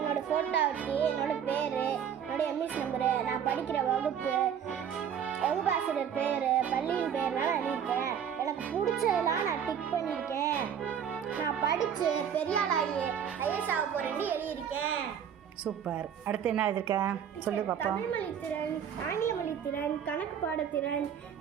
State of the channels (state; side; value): quieter; left; 8.4 dB